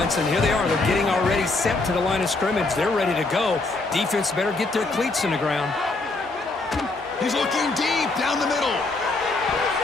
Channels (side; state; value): right; quieter; 3.3 dB